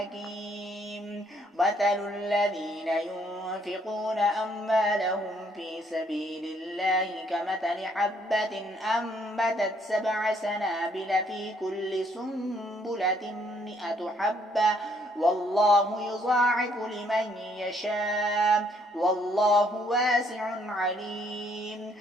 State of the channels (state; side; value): normal; both; correlation 0.67